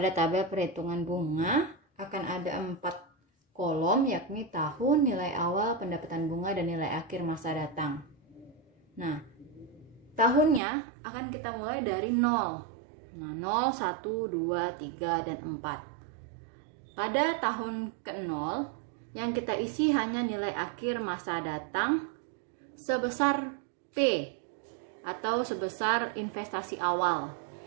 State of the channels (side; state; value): left; drops out; at 10.6 s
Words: tabel perhitungan bunga akan ada 4 kolom, yakni tahun, nilai awal, pendapatan bunga, dan nilai akhir masa datang. Nah, tahunnya akan kita mulai dari 0. Nah, 0, 1, 2, 3, dan 4. Pada tahun ke-0, yang kita isi hanya nilai akhir masa datang sebesar P atau sebesar investasi awal,